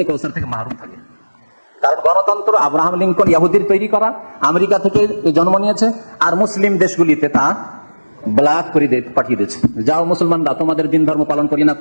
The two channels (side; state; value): both; inverted; correlation -1.00